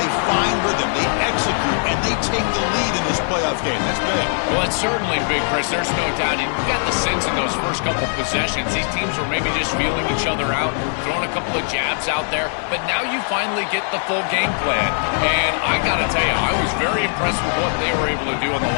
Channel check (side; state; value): right; silent; 58 dB below the other